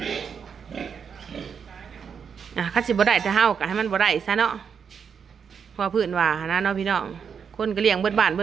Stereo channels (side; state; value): left; quieter; 6.8 dB